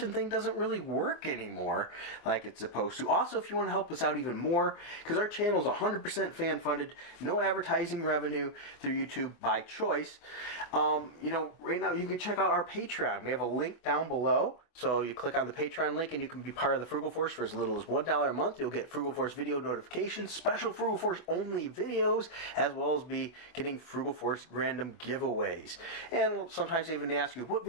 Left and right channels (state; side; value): late; right; 24 ms